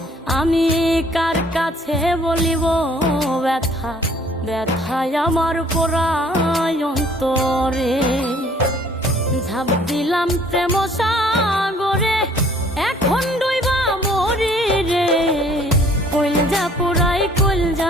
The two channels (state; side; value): normal; both; correlation 0.57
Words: আমি কার কাছে বলিব ব্যথা, ব্যথায় আমার পুরায় অন্তরে। ঝাঁপ দিলাম প্রেম সাগরে, এখন ডুইবা মরি রে। কইলজা পুরাই